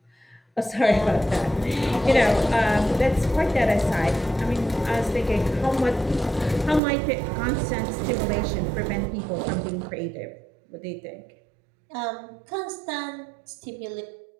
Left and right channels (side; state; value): left; drops out; at 6.8 s